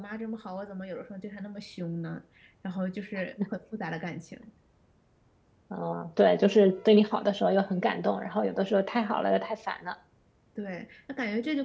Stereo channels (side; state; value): both; identical; correlation 1.00